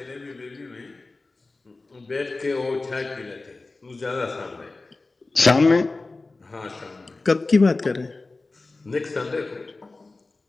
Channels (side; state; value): right; quieter; 3.4 dB